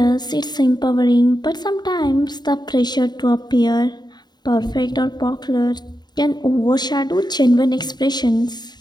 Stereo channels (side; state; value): right; late; 0.20 ms